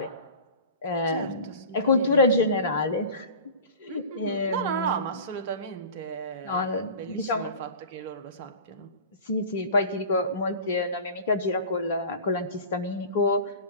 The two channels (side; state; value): both; inverted; correlation -0.37